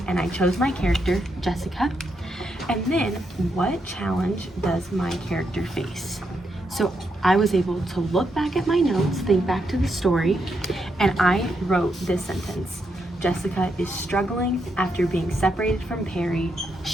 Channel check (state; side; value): normal; both; correlation 0.81